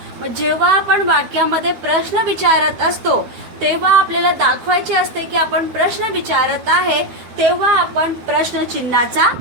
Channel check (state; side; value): late; left; 13 ms